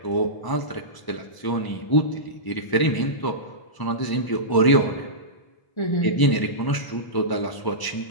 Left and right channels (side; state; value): right; late; 1.0 ms